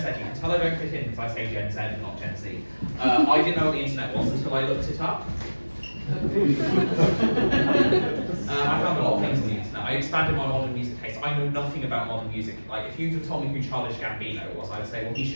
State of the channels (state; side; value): inverted; both; correlation -1.00